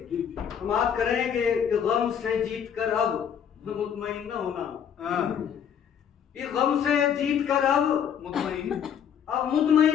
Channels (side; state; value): right; quieter; 8.3 dB